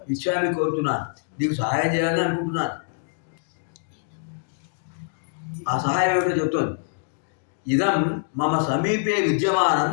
ఇచ్చామి కోరుతున్నాను. నీకు సహాయం చేయాలని అనుకుంటున్నాను. ఆ సహాయం ఏమిటో చెప్తోంది. ఇదం మమ సమీపే విద్యమానం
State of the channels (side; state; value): right; silent; digital silence